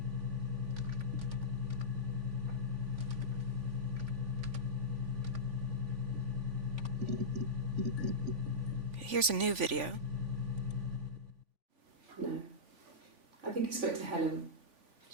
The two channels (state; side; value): late; left; 3.5 ms